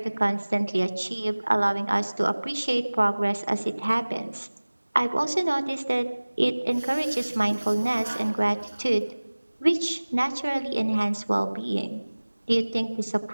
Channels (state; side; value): inverted; both; correlation -1.00